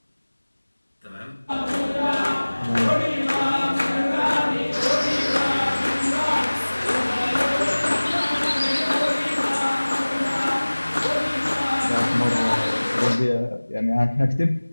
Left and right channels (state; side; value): inverted; both; correlation -1.00